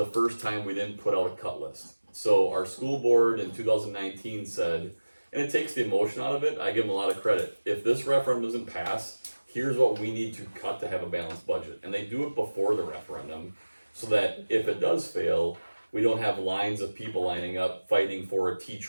first time we didn't put out a cut list. So our school board in 2019 said, and it takes the emotion out of it. I give them a lot of credit. If this referendum doesn't pass, here's what we need to cut to have a balanced budget, and they do it before the referendum. So that if it does fail, we don't have lines of people lining up fighting for a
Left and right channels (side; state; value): both; inverted; correlation -1.00